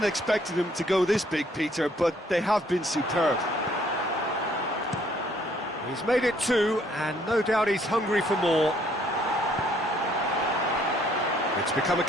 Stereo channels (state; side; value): normal; both; correlation 0.64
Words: expecting them to go this big, Peter, but they have been superb. He's made it two, and no doubt he's hungry for more. It's become a